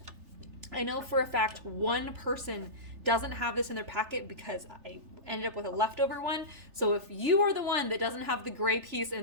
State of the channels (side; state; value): left; late; 3.4 ms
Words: I know for a fact one person doesn't have this in their packet because I ended up with a leftover one. So if you are the one that doesn't have the gray piece